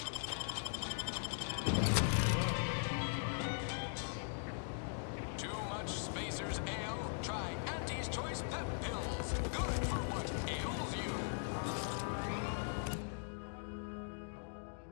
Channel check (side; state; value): right; silent; digital silence